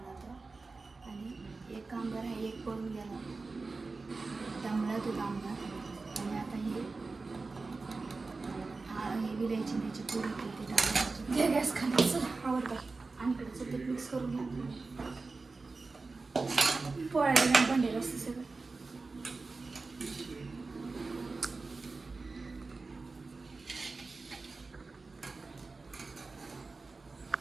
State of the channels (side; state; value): left; quieter; 3.9 dB